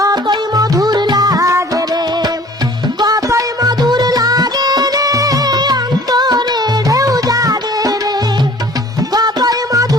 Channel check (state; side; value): normal; both; correlation 0.50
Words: মধুর লাগে রে কতই মধুর লাগে রে অন্তরে ঢেউ জাগে রে কতই